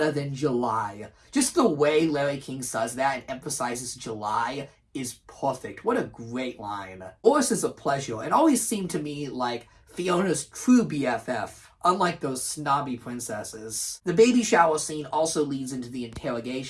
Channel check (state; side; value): identical; both; correlation 1.00